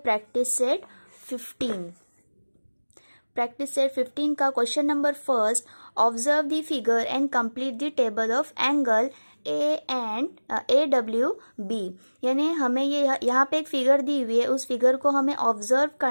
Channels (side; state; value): both; inverted; correlation -1.00